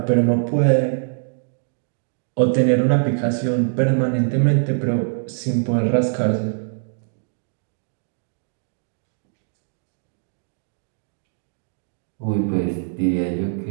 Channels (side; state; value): left; silent; digital silence